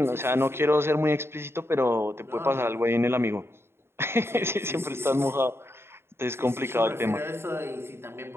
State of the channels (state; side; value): late; left; 0.12 ms